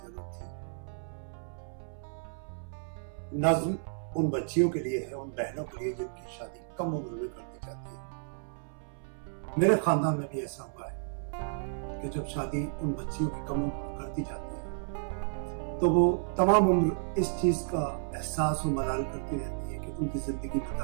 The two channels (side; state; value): left; silent; 56 dB below the other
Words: जरूरत थी। नज़्म उन बच्चियों के लिए है, उन बहनों के लिए जिनकी शादी कम उम्र में कर दी जाती है। मेरे खानदान में भी ऐसा हुआ है कि जब शादी उन बच्चियों की कम उम्र में कर दी जाती है तो वो तमाम उम्र इस चीज का एहसास और मलाल करती रहती है कि उनकी जिंदगी में